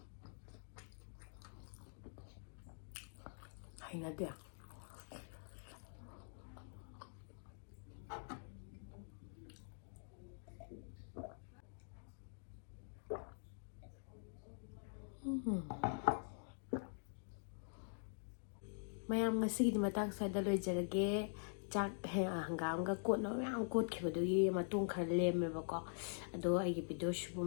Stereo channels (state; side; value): silent; right; digital silence